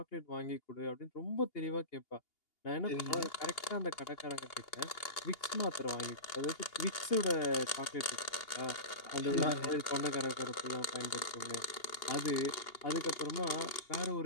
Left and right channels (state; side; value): late; right; 2.8 ms